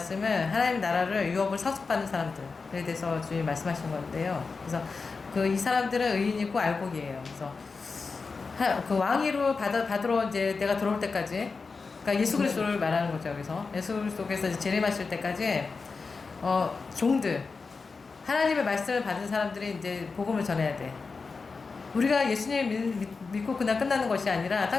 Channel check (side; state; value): right; quieter; 4.5 dB